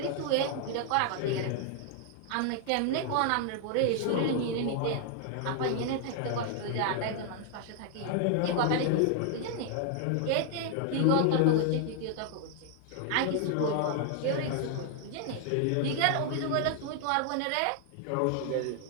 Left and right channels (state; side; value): different; both; correlation 0.00